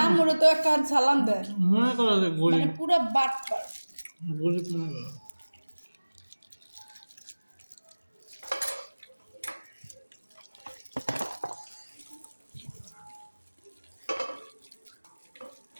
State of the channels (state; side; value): inverted; both; correlation -1.00